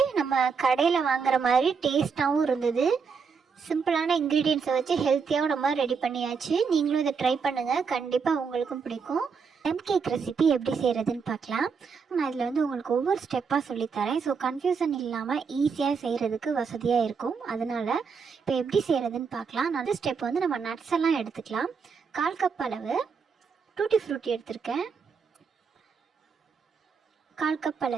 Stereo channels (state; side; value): quieter; left; 5.7 dB